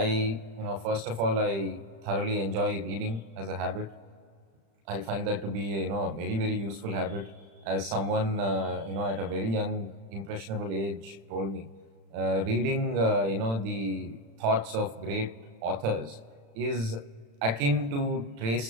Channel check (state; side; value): late; left; 35 ms